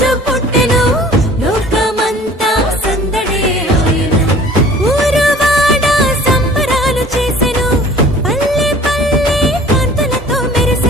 పుట్టెను, లోకమంతా సందడే ఆయెను. ఊరువాడ సంబరాలు చేసెను, పల్లె పల్లె కాంతులతో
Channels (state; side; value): normal; both; correlation 0.48